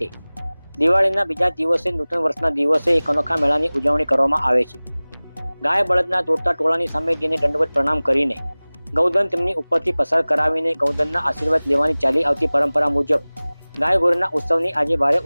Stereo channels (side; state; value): both; inverted; correlation -1.00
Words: દિવાળીના બીજા દિવસે નૂતન વર્ષના દિવસે એક અનોખા મેળાની ઉજવણી કરવામાં આવે છે। ગાય બળદના દોડતા ટોળાની સામે જેને દંડવત પ્રણામ કરીને ગૌધન તેમની ઉપરથી પસાર કરાવીને ગૌધનના આશીર્વાદ લેવાની ચાલી આવતી પરંપરા મુજબ ગાય ગોરીના ઉત્સવની આજે ભારે